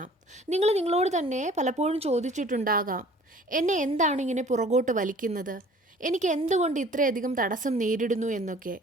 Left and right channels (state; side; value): normal; both; correlation 0.51